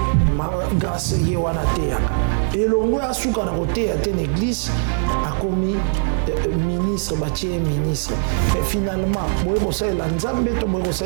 Grâce ye wana te yaka. Elongo ya suka na kote ya te l'église a commis ministre, bâtier ministre. Mais finalement,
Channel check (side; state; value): left; silent; 65 dB below the other